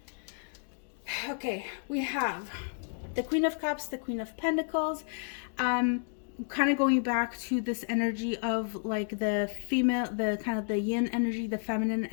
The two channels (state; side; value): silent; right; 57 dB below the other